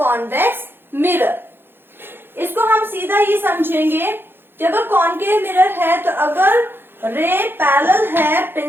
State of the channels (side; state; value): left; late; 0.10 ms